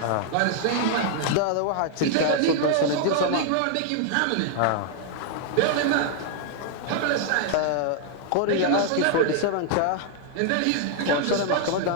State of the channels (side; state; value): both; different; correlation 0.00